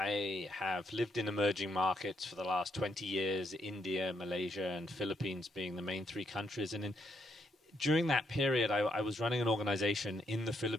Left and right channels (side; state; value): both; normal; correlation 0.76